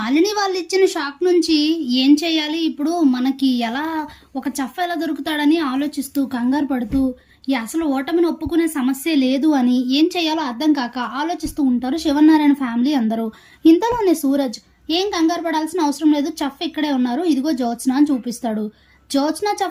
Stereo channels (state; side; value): identical; both; correlation 1.00